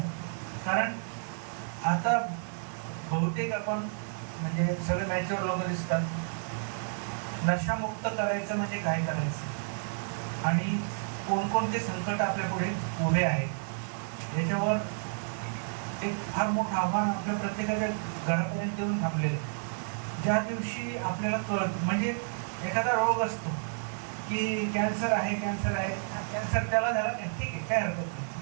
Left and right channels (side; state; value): left; silent; digital silence